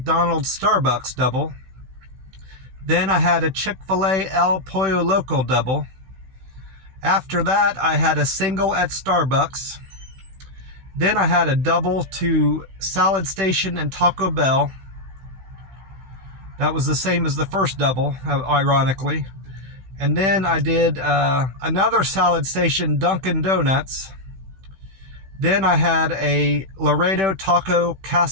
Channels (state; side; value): late; left; 16 ms